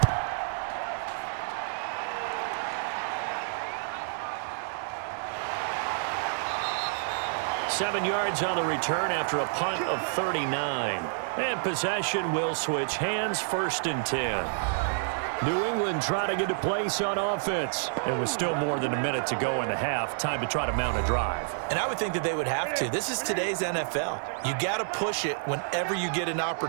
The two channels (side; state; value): left; silent; digital silence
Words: 7 yards on the return after a punt of 39. And possession will switch hands, 1st and 10. New England trying to get a place on offense. It was still more than a minute to go in the half. Time to try to mount a drive. And I would think that they would have to. This is today's NFL. You got to push it whenever you get an